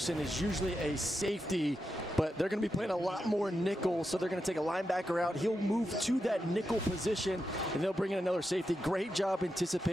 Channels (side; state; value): both; normal; correlation 0.87